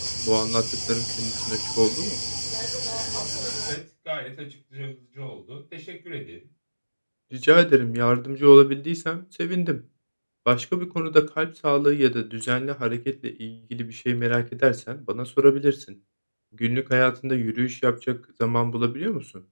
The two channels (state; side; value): inverted; both; correlation -1.00